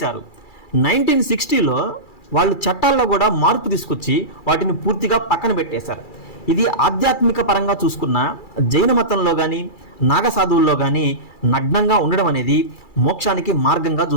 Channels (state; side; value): late; right; 2.3 ms